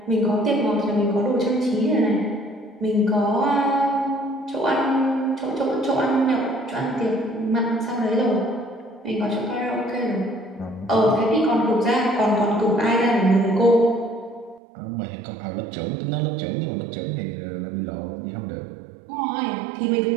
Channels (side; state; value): left; drops out; at 14.6 s